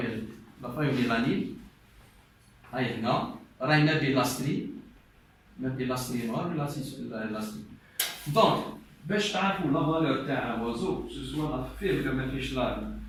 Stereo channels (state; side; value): identical; both; correlation 1.00